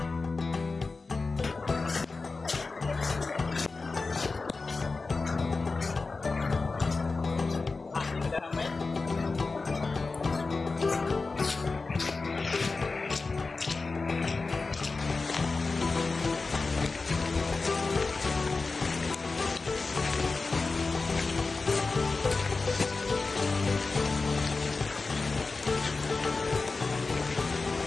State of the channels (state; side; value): quieter; right; 3.9 dB